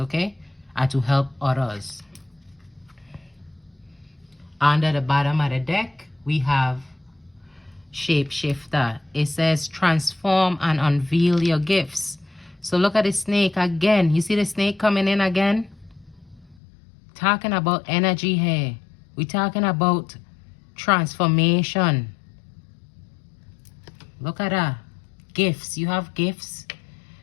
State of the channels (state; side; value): drops out; right; at 16.6 s